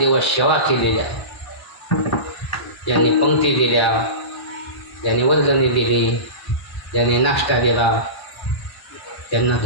सेवा केलेल्या, ज्यांनी पंक्ती दिल्या, ज्यांनी वर्गणी दिली, ज्यांनी नाश्ता दिला, त्यांना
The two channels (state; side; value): late; right; 1.1 ms